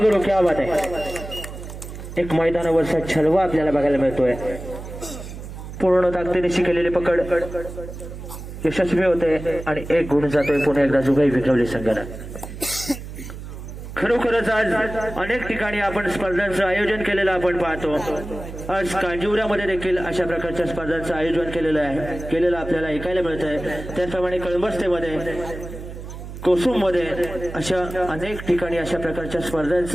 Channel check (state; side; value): noise; right; hum, 11 dB below the sound